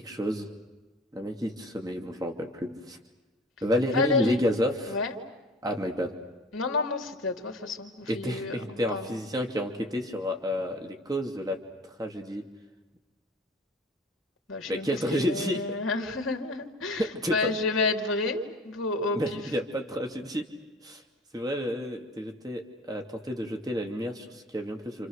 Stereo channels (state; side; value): normal; both; correlation 0.44